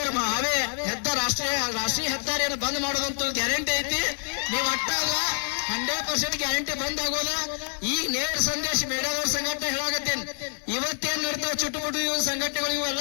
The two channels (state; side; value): silent; right; 60 dB below the other